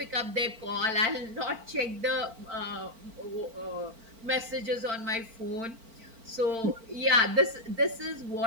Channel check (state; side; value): late; left; 4.4 ms